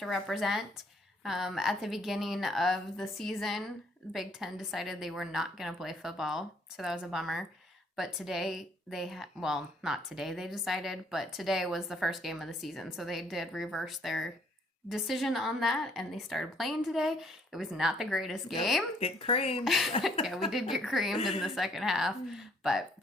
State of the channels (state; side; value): normal; both; correlation 0.65